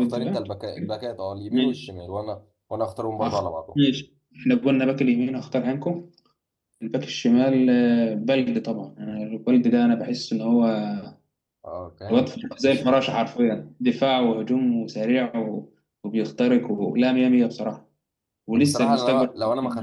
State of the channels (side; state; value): both; identical; correlation 1.00